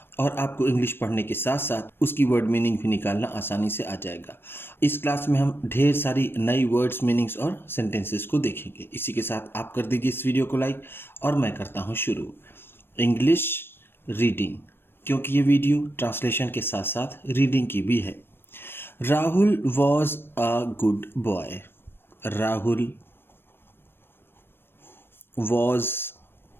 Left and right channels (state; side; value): late; right; 0.10 ms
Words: और आपको इंग्लिश पढ़ने के साथ साथ उसकी वर्ड मीनिंग भी निकालना आसानी से आ जाएगा। इस क्लास में हम ढेर सारी नई वर्ड्स मीनिंग्स और सेंटेंसेस को देखेंगे। इसी के साथ आप कर दीजिए इस वीडियो को लाइक और मैं करता हूँ शुरू। इंग्लिश रीडिंग, क्योंकि ये वीडियो ट्रांसलेशन के साथ साथ रीडिंग की भी है। Rahul was a good boy. Rahul was,